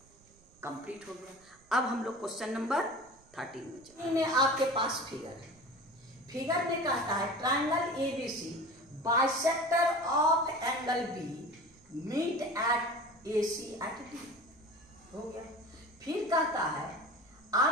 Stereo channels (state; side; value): noise; right; rumble, 28 dB below the sound